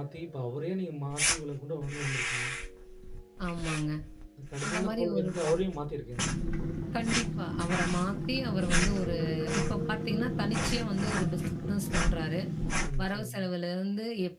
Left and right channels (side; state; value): both; identical; correlation 1.00